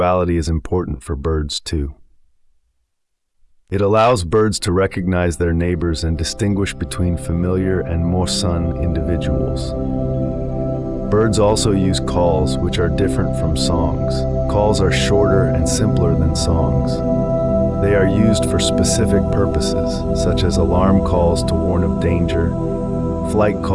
is important for birds too. It allows birds to recognize their neighbors and distinguish between familiar and mosun individuals. Birds also use calls, which are different from songs. Calls are shorter and simpler than songs. They are used for specific purposes, such as alarm calls to warn of danger, flight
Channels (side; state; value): both; identical; correlation 1.00